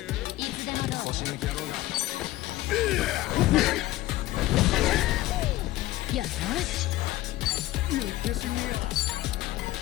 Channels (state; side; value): quieter; right; 16.7 dB